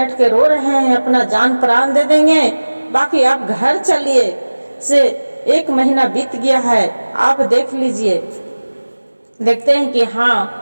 के रो रहे हैं, अपना जान प्राण दे देंगे, बाकी आप घर चलिए। से 1 महीना बीत गया है, आप देख लीजिए। देखते हैं कि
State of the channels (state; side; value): inverted; both; correlation -1.00